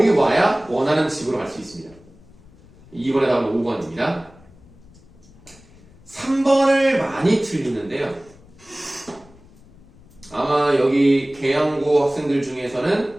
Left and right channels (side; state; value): left; noise; rumble, 25 dB below the sound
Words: 와야 원하는 집으로 갈 수 있습니다. 2번에 답은 5번입니다. 3번을 많이 틀리는데요. 아마 여기 계양고 학생들 중에서는